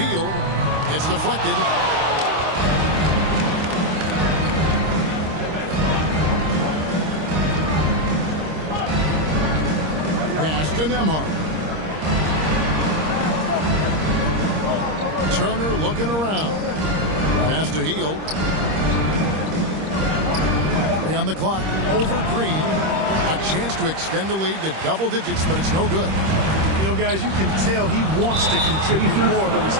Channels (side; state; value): left; late; 26 ms